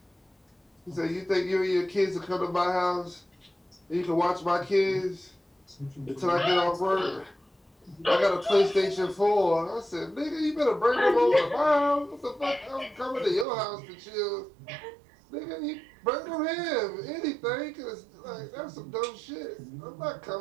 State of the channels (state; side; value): drops out; left; at 13.5 s